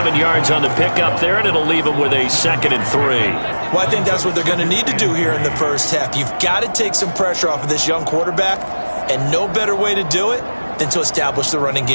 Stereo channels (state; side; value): inverted; both; correlation -1.00